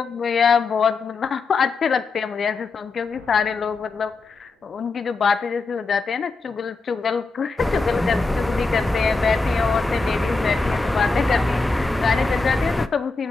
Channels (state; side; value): quieter; right; 4.0 dB